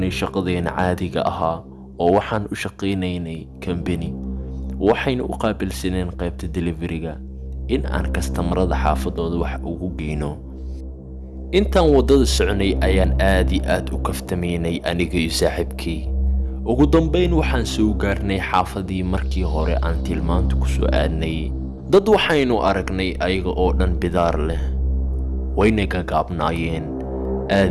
shaqadeena caadiga ahaa oo waxaan u shaqaynaynay company. waxayna u qaabilsaneen qaybta delivery-ga in aan kastamarada xaafadooda wax ugu geyno. intaan wadada soconay ayaan aad iyo aad u kaftamaynay aniga iyo saaxiibkay. ugu dambayn waxaan soo gaarnay xaafadii markii hore aan tilmaanta ku soo aadnay. dad waxaynu aragnay ayaga oo dhan bidaar leh, wayna gagaabnaayeen.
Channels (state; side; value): identical; both; correlation 1.00